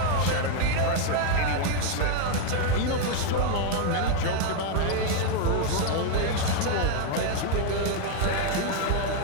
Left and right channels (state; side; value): different; both; correlation 0.00